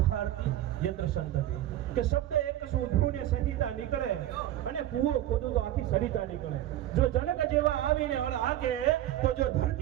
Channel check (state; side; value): quieter; left; 13.2 dB